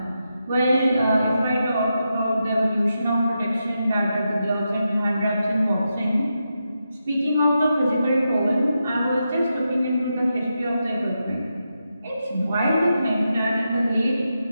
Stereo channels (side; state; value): both; inverted; correlation -0.87